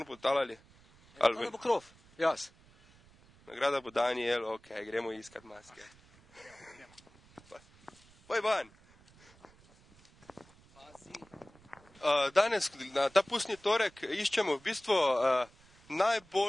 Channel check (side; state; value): right; noise; rumble, 27 dB below the sound